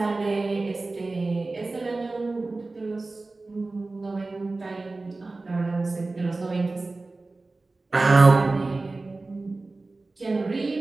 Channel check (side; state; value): left; quieter; 3.4 dB